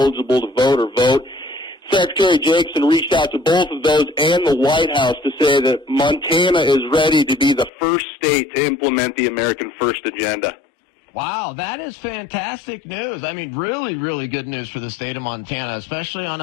to vote or vote. Secretary Jacobson reached out to both of those and the White House to say that Montana is ready to be the first state to implement the American First agenda. Wow, that is fantastic news. I mean, really, really good news for the state of Montana, especially on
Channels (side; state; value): right; drops out; at 7.7 s